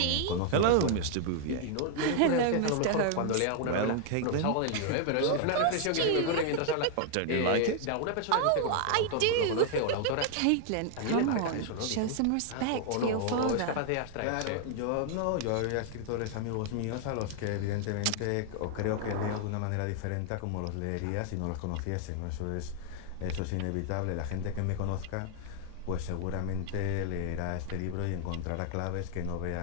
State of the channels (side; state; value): both; different; correlation 0.00